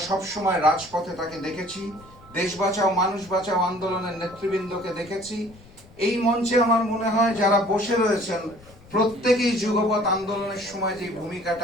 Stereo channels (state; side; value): noise; left; rumble, 23 dB below the sound